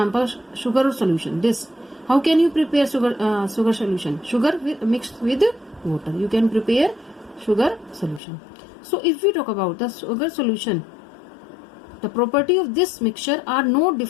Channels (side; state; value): right; drops out; at 8.2 s